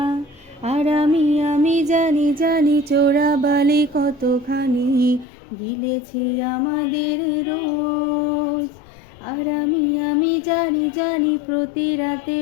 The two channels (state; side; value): drops out; right; at 5.2 s